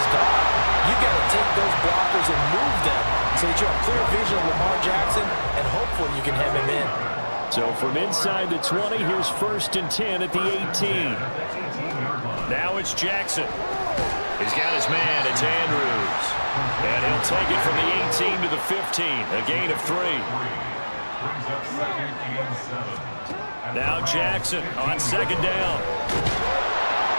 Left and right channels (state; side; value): inverted; both; correlation -1.00